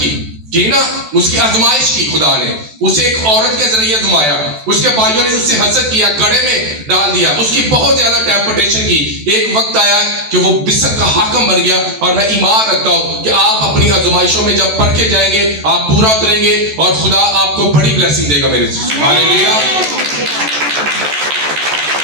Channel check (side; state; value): left; late; 14 ms